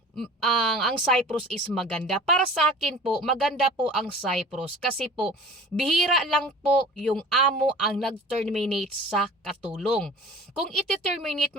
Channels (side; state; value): both; normal; correlation 0.43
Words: ang Cyprus is maganda. Para sa akin po, maganda po ang Cyprus kasi po bihira lang po yung amo ang nag-terminate sa katulong. Kung iti-terminate